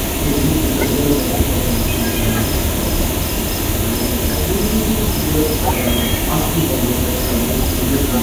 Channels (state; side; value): identical; both; correlation 1.00